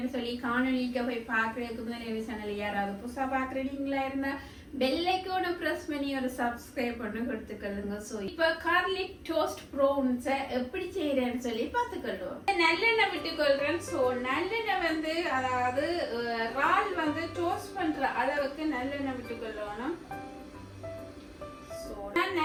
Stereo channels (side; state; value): both; identical; correlation 1.00